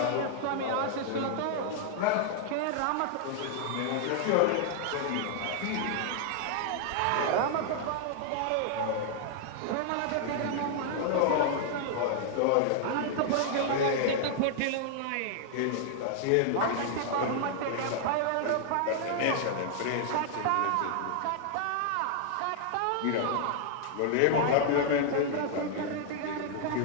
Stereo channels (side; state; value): both; different; correlation -0.01